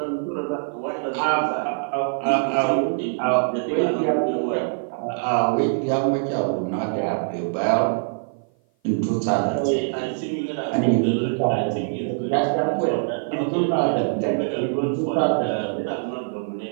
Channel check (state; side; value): silent; left; 55 dB below the other